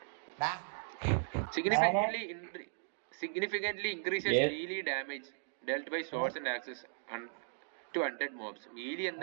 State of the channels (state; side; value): silent; left; digital silence